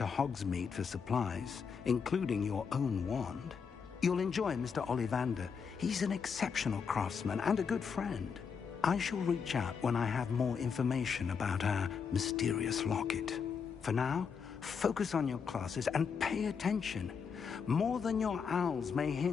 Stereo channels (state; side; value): quieter; right; 6.2 dB